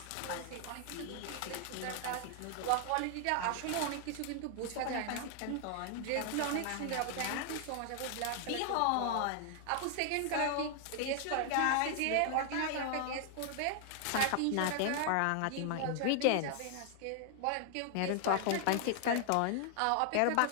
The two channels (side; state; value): both; different; correlation 0.00